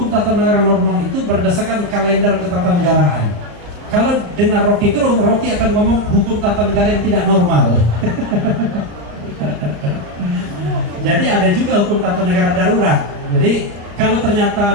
tata negara normal itu berdasarkan kalender ketatanegaraan. Kalau dengar Rocky Gerung, Rocky akan ngomong hukum tata negara yang tidak normal. Jadi ada juga hukum tata negara darurat. Jadi kalau ternyata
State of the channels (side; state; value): left; late; 34 ms